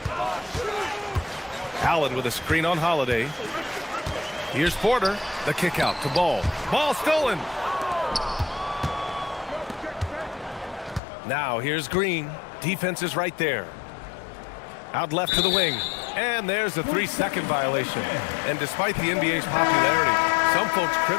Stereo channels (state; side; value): drops out; right; at 11.0 s